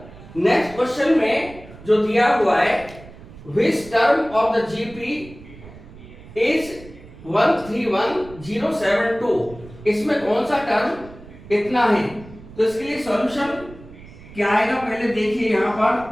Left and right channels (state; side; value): noise; right; rumble, 18 dB below the sound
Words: नेक्स्ट क्वेश्चन में जो दिया हुआ है, which term of the GP is 131072, इसमें कौन सा टर्म इतना है, तो इसके लिए सॉल्यूशन क्या आएगा पहले देखिए। यहां पर